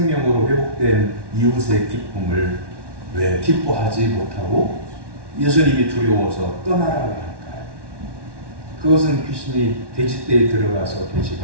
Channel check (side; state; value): left; late; 1.2 ms